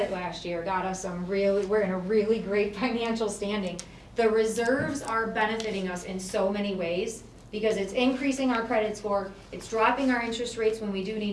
last year, got us we're in a really great financial standing. The reserves are benefiting us in so many ways because it's increasing our credit score, it's dropping our interest rates when we do need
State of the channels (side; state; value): both; identical; correlation 1.00